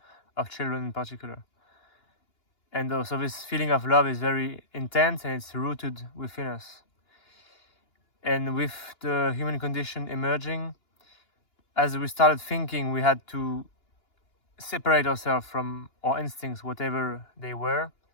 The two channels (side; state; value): right; late; 2.9 ms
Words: of children in particular. And so this feeling of love is very intense and it's rooted within us. And with the human condition emerging, as we started thinking, we had to separate ourselves from our instincts, whatever they were.